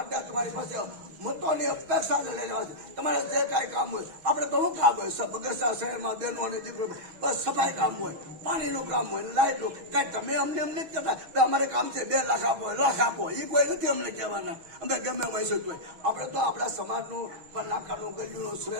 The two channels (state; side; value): late; left; 6.2 ms